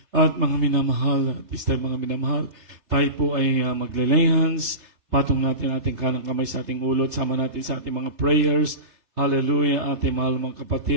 At mga minamahal, at this time mga minamahal, tayo po ay magle-lay hands, patong natin ating kanang kamay sa ating ulo, sama natin sa ating mga prayers. Hallelujah, ating mahal mga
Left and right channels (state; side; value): late; left; 3.3 ms